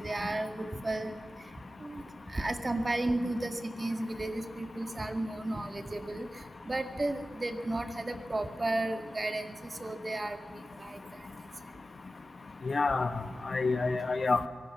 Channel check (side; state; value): both; normal; correlation 0.94